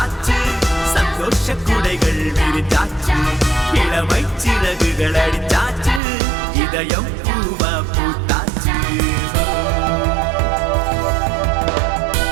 சந்தோஷ குடைகள் விரிஞ்சாச்சு, இளமை சிறகுகள் அடிச்சாச்சு, இதயம் பூவா பூத்தாச்சு.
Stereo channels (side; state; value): left; drops out; at 6.0 s